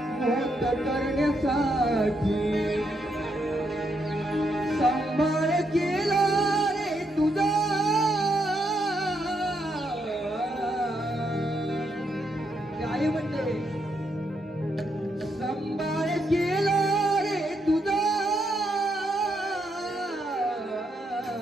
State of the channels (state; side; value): normal; both; correlation 0.78